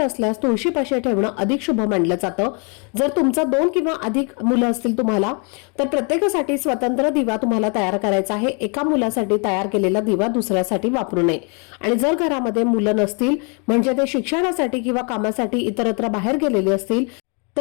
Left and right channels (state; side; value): quieter; right; 36.4 dB